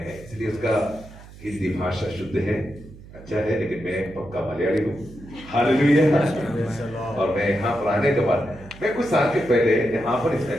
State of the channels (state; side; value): noise; right; hum, 19 dB below the sound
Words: इसलिए उसका हिंदी भाषा शुद्ध है, अच्छा है, लेकिन मैं पक्का मलयाली हूँ। हालेलुया। और मैं यहाँ पर आने के बाद मैं कुछ साल के पहले यहाँ पर इस